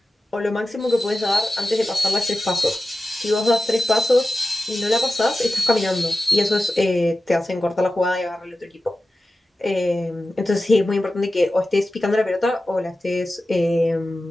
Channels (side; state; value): both; normal; correlation 0.94